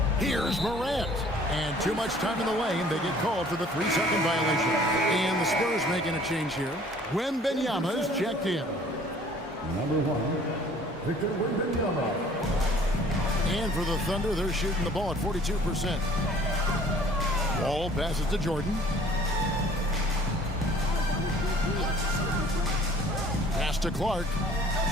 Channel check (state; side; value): normal; both; correlation 0.53